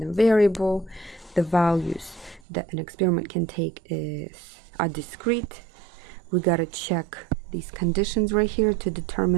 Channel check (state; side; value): drops out; left; at 2.4 s